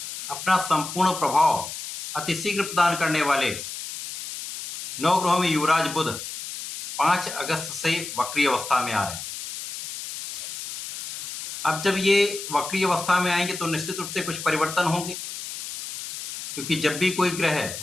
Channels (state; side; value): noise; left; hiss, 8 dB below the sound